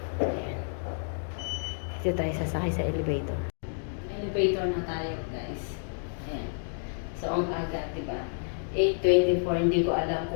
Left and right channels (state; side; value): silent; right; digital silence